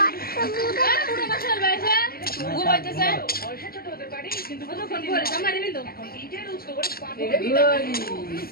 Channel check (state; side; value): late; right; 0.44 ms